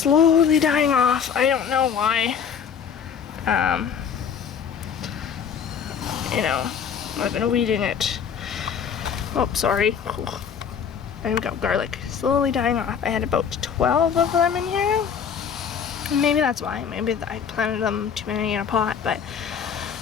dying off. I don't know why. You know, I've been weeding it. Oh, sorry. There we go, garlic. Slowly dying off. I had about 12 of them in here. Maybe that's why. Maybe I planted them too many in a pot, but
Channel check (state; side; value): quieter; right; 7.3 dB